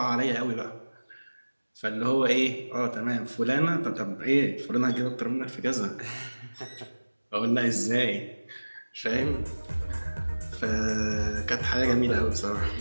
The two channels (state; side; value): inverted; both; correlation -1.00